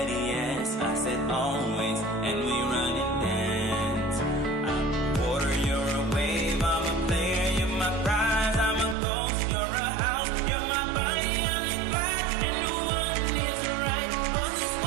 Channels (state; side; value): drops out; left; at 9.0 s